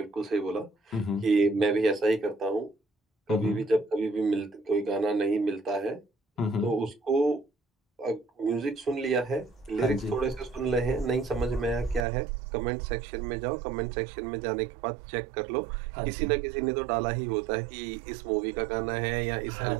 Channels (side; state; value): left; drops out; at 12.1 s